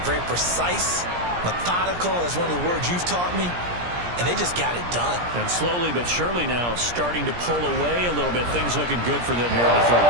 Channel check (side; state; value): left; late; 17 ms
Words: Very precise, methodical. That's one of the words you've taught me. And they just got it done. And slowly but surely now starting to pull away a little bit. Things looking good for them here in the third